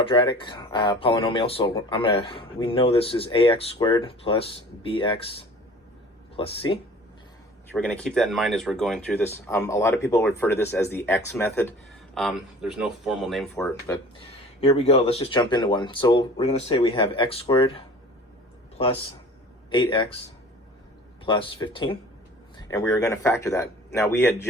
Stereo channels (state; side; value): normal; both; correlation 0.45